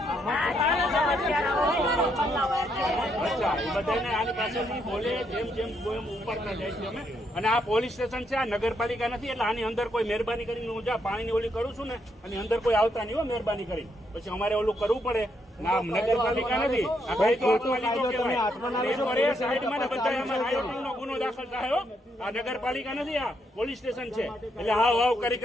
અચ્છા, એ બધાને આની પાસેથી બોલે જેમ જેમ ઉપરતા જાય છે અમે. અને આ પોલીસ સ્ટેશન છે, આ નગરપાલિકા નથી. એટલે આની અંદર કોઈ મહેરબાની કરીને હું જ્યાં પાણીની ઓલી કરું છું ને, આની અંદર કોઈ આવતા નહીં હો મહેરબાની કરી. પછી અમારે ઓલું કરવું પડે. ના, નગરપાલિકા નથી. ગુનો દાખલ થાય હો. આ નગરપાલિકા નથી, આ પોલીસ સ્ટેશન છે. એટલે હાવ હાવ કરી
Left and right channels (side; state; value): both; normal; correlation 0.76